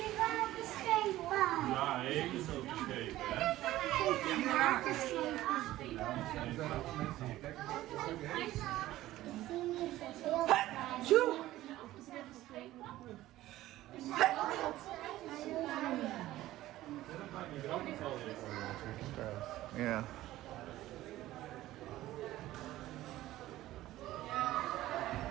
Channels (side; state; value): left; quieter; 15.5 dB